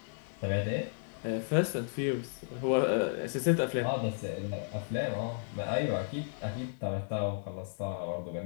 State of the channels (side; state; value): right; silent; 55 dB below the other